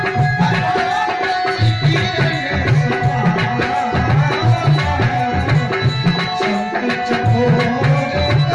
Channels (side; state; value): both; identical; correlation 1.00